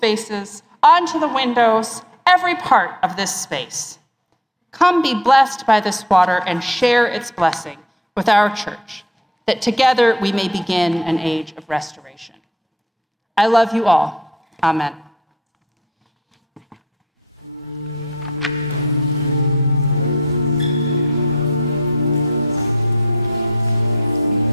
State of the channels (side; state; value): both; normal; correlation 0.53